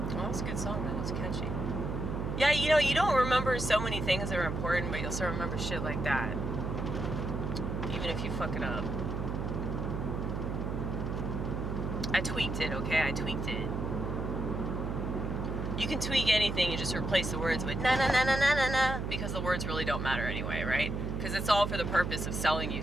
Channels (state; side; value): noise; right; hum, 2 dB below the sound